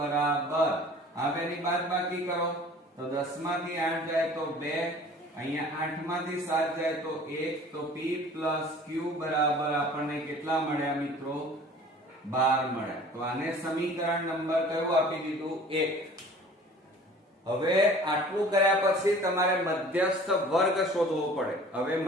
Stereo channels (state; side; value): normal; both; correlation 0.47